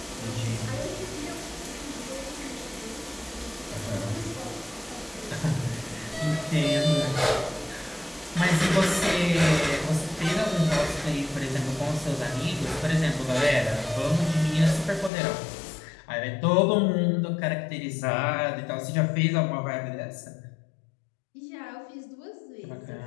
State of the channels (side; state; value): right; drops out; at 15.1 s